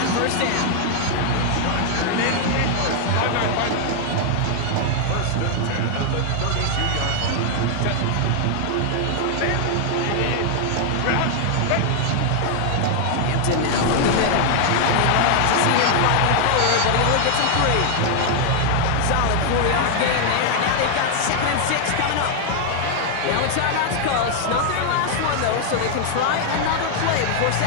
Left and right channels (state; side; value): different; both; correlation 0.00